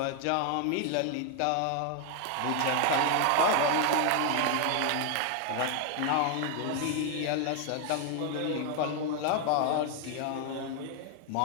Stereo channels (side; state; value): both; different; correlation 0.00